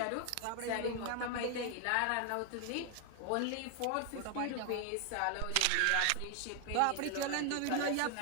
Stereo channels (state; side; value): different; both; correlation 0.01